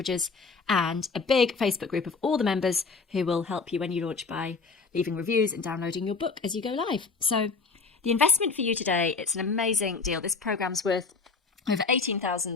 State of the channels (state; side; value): quieter; right; 4.5 dB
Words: and a big Facebook group of all the members who will help you when you launch by leaving reviews and downloading your book as you go live. So the investment for you today, it's an amazing deal. This program's worth over